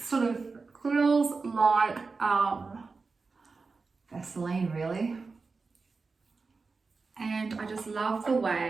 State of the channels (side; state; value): left; quieter; 4.3 dB